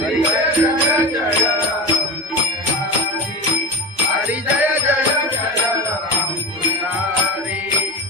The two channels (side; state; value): both; normal; correlation 0.25